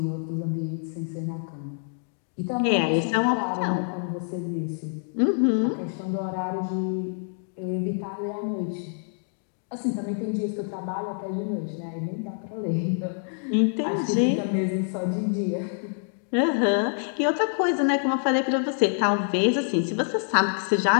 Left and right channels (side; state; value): right; silent; 61 dB below the other